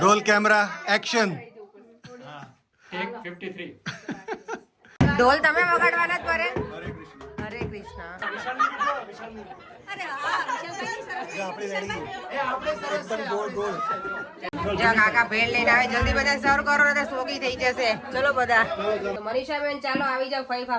Roll camera action. ટેક 53. ઢોલ તમે વગાડવાના જ પરે? હરે કૃષ્ણ. જો કાકા ભેળ લઈને આવે, જલ્દી બધા સર્વ કરો ને સોગી થઈ જશે. ચલો બધા. મનીષા બેન ચાલો આવી જાવ ફઈ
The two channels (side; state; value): both; identical; correlation 1.00